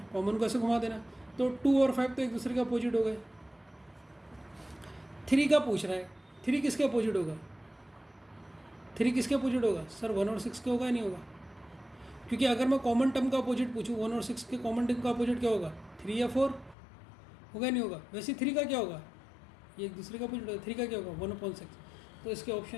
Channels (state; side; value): drops out; right; at 16.8 s